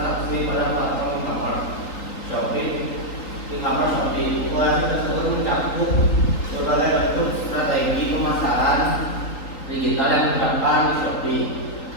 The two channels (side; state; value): right; late; 3.9 ms